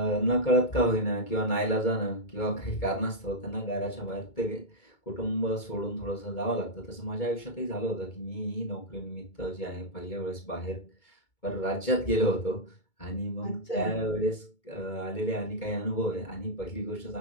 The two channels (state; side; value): late; right; 2.2 ms